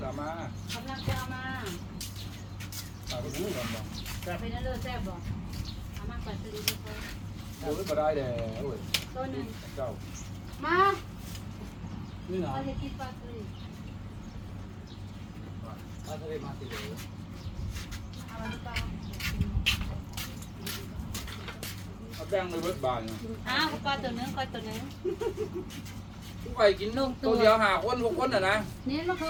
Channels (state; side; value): identical; both; correlation 1.00